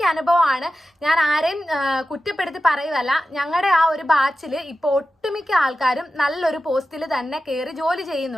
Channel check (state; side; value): normal; both; correlation 0.92